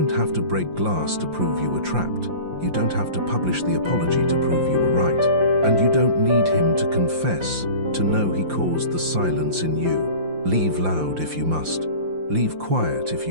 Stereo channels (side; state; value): left; late; 5.7 ms